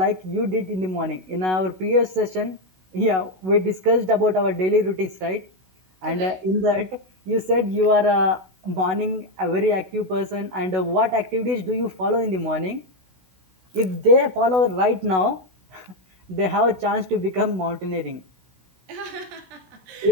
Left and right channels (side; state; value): left; late; 16 ms